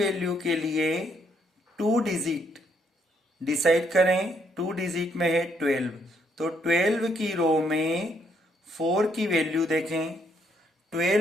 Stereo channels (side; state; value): both; normal; correlation 0.71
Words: के लिए 2 डिजिट डिसाइड करें। 2 डिजिट में है 12, तो 12 की रो में 4 की वैल्यू देखें।